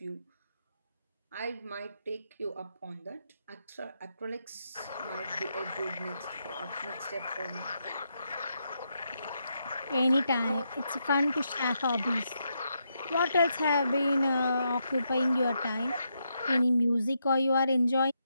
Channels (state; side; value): inverted; both; correlation -0.81